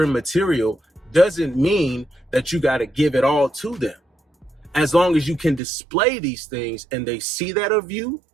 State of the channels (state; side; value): drops out; left; at 5.6 s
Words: material, doesn't mean that you got to give it all to them. As long as you can display these things and they see that of you,